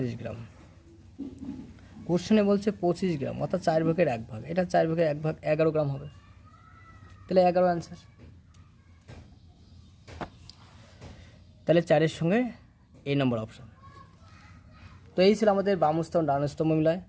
গ্রাম। কোশ্চেনে বলছে 25 গ্রাম অর্থাৎ 4/1 এটা 4/1 11 গ্রাম হবে, তাহলে 11 অ্যান্সার। তাহলে 4-এর সঙ্গে এই নম্বর অপশান। তো এই ছিল আমাদের বাম স্তম্ভ ডান স্তম্ভ মিলায়।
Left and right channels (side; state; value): both; identical; correlation 1.00